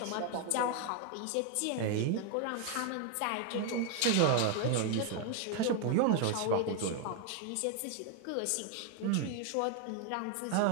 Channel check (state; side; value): different; both; correlation 0.00